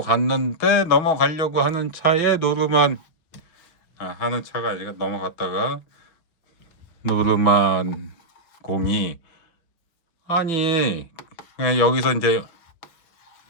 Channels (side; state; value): right; late; 6.0 ms